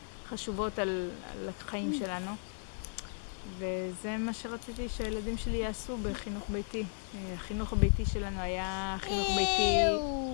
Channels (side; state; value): right; silent; digital silence